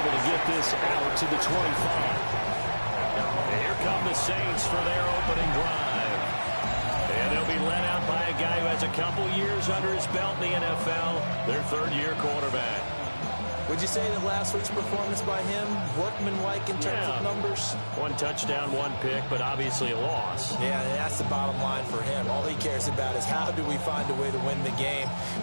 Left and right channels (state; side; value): inverted; both; correlation -1.00